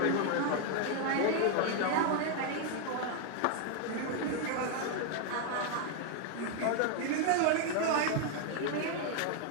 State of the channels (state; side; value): different; both; correlation 0.00